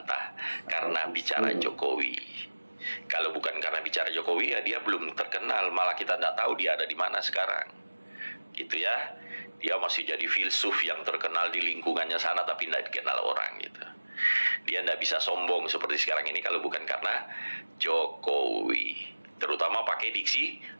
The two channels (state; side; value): inverted; both; correlation -1.00